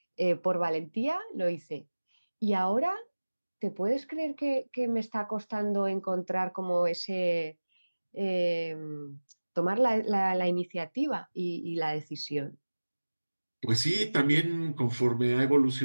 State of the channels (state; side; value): inverted; both; correlation -1.00